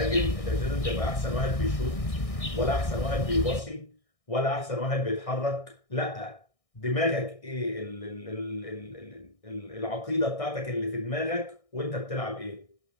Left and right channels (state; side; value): late; right; 1.6 ms